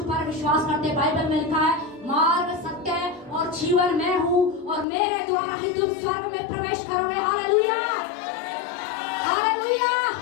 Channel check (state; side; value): drops out; right; at 4.9 s